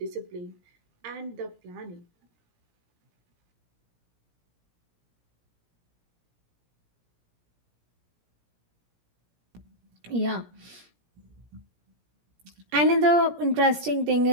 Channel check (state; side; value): late; left; 17 ms